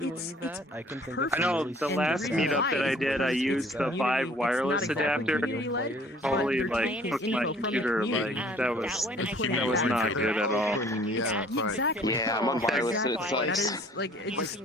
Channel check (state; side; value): normal; both; correlation 0.55